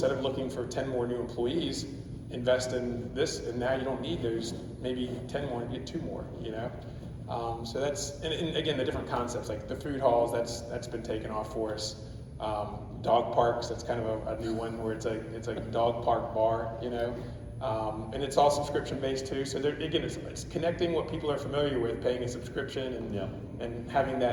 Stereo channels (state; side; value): identical; both; correlation 1.00